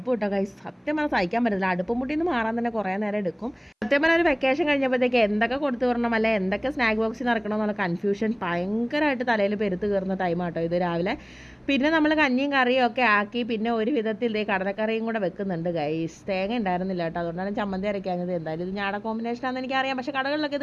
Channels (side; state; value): both; identical; correlation 1.00